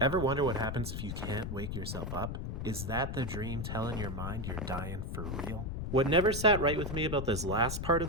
Ever wonder what happens if you can't wake yourself up? Is that the dream telling your mind you're dying for real? What never sat right with me about this last part of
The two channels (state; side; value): noise; left; rumble, 4 dB below the sound